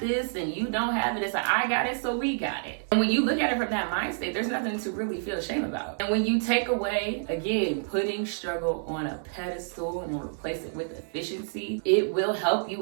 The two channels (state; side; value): silent; left; digital silence